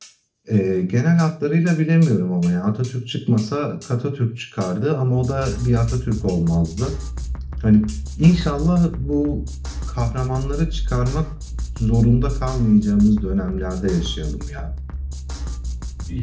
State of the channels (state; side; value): identical; both; correlation 1.00